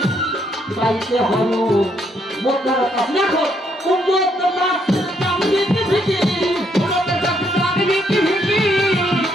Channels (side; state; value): both; normal; correlation 0.72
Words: খাইতে হয় মোটের কাছে। দেখো উন্নত নাচের দাম দিতে ভিকি, উন্নত নাচের দাম দিতে ভিকি,